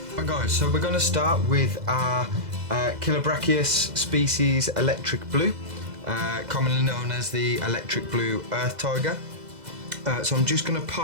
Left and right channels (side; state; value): left; late; 2.0 ms